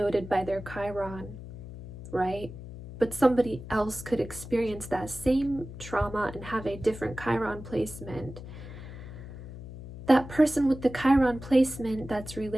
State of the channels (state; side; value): noise; left; hum, 13 dB below the sound